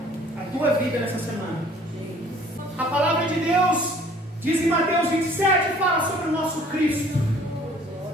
a tua vida nessa semana. A palavra de Deus diz em Mateus 27, fala sobre o nosso Cristo.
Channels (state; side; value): normal; both; correlation 0.54